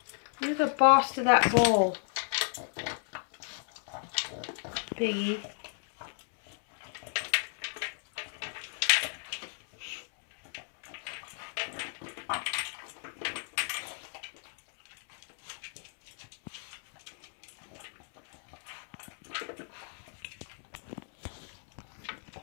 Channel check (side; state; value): right; silent; 55 dB below the other